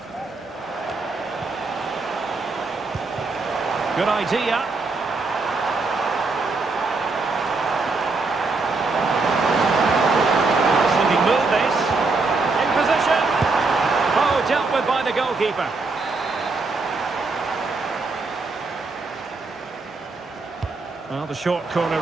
Good idea. Sneaking move this. In position. Oh, dealt with by the goalkeeper. Well, the short corner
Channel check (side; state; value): left; quieter; 3.8 dB